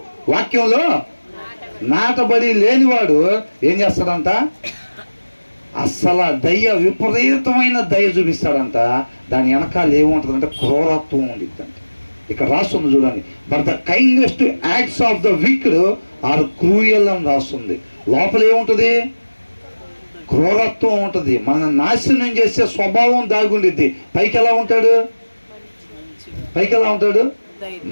వాక్యంలో నాటబడి లేనివాడు ఏం చేస్తాడంట? అస్సలు దయ, విపరీతమైన దయ చూపిస్తాడంట. దాని వెనకాల ఏముంటుందంటే క్రూరత్వం ఉండిద్దంట. ఇక్కడ రాస్తుంది చూడండి, but the kindest acts of the wicked are cruel అని రాస్తుంది. లోపల ఏముంటుంది? క్రూరత్వం ఉంటుంది. మన నాశనం చేసే స్వభావం దాగుండిద్ది. పైకి ఎలా ఉంటాడు?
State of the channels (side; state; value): both; inverted; correlation -1.00